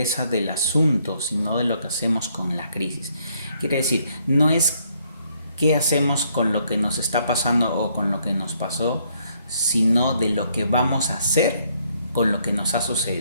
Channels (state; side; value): inverted; both; correlation -0.70